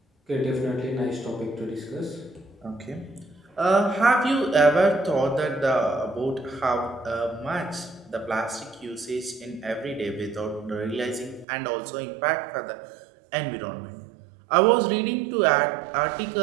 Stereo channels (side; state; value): left; drops out; at 11.5 s